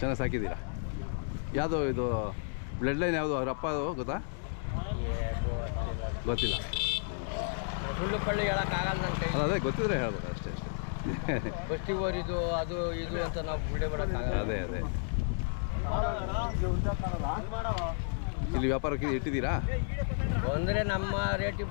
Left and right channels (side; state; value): right; silent; digital silence